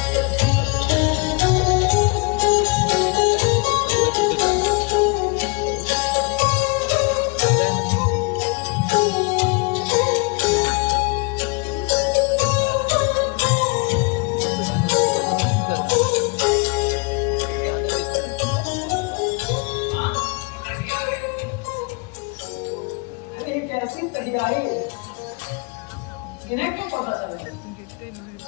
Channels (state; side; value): quieter; right; 31.0 dB